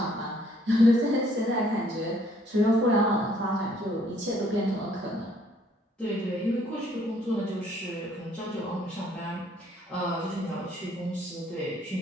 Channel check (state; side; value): normal; both; correlation 0.64